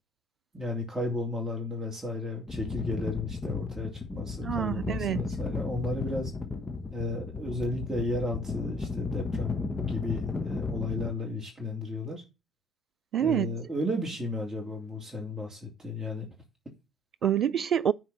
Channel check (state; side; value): normal; both; correlation 0.55